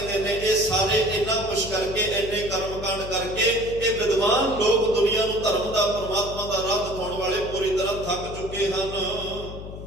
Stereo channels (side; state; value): left; noise; hum, 11 dB below the sound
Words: ਨੇ ਇਹ ਸਾਰੇ ਇੰਨਾ ਕੁਛ ਕਰਕੇ, ਇੰਨੇ ਕਰਮ ਕਾਂਡ ਕਰਕੇ ਇਹ ਵਿਦਵਾਨ ਲੋਕ ਦੁਨੀਆ ਨੂੰ ਧਰਮ ਦਾ, ਪਰਮਾਤਮਾ ਦਾ ਰਾਹ ਦਿਖਾਉਣ ਵਾਲੇ ਪੂਰੀ ਤਰ੍ਹਾਂ ਥੱਕ ਚੁੱਕੇ ਹਨ।